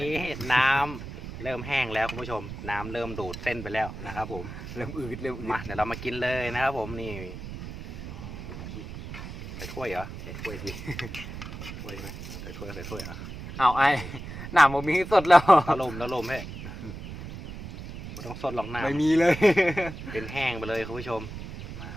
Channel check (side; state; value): right; noise; rumble, 10 dB below the sound